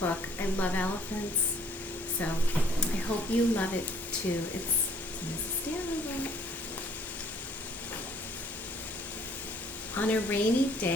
book. I love elephants, so I hope you love it too. It's Mrs. Stanley. On a rainy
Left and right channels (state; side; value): normal; both; correlation 0.59